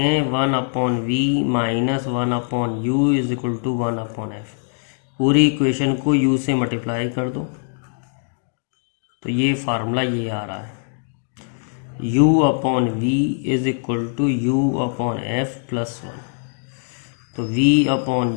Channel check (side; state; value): right; silent; digital silence